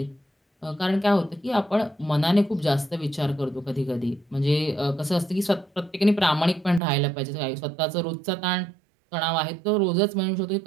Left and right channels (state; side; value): drops out; left; at 6.8 s